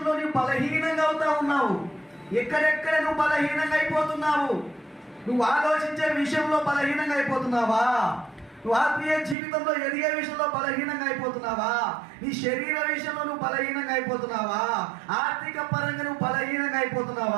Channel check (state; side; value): drops out; left; at 9.3 s